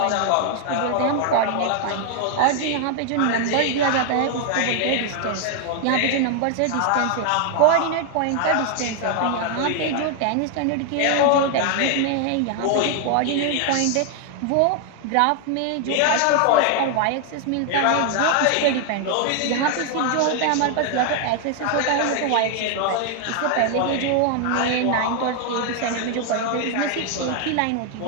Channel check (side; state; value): both; different; correlation 0.00